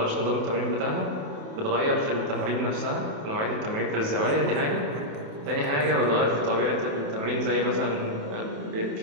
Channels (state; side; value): late; left; 28 ms